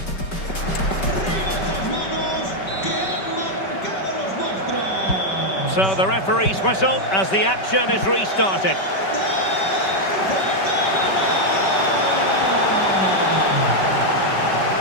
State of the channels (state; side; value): late; right; 5.2 ms